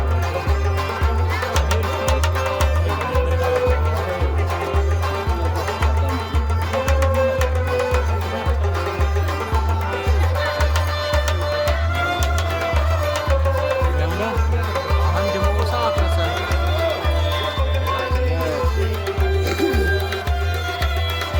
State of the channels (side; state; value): both; identical; correlation 1.00